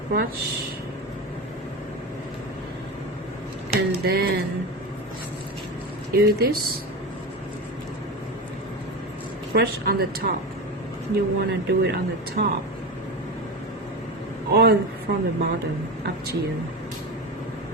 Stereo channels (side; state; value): both; normal; correlation 0.22